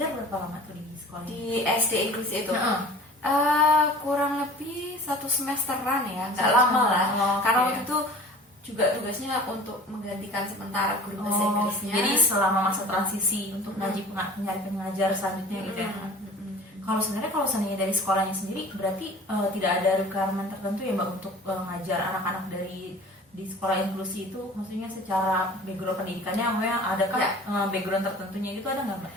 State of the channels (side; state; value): both; normal; correlation 0.43